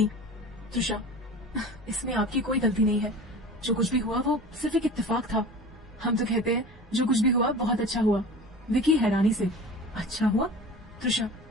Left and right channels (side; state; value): both; normal; correlation 0.37